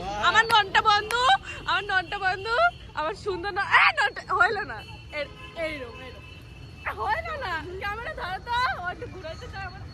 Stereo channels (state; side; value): identical; both; correlation 1.00